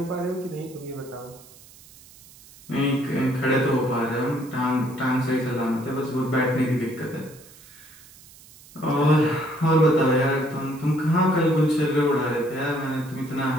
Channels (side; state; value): right; noise; hiss, 23 dB below the sound